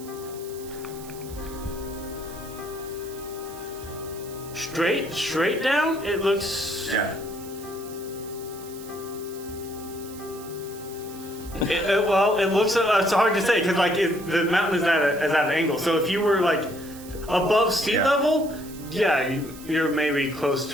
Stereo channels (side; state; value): right; noise; hiss, 17 dB below the sound